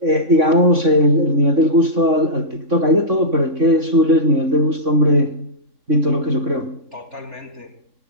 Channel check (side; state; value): left; late; 3.6 ms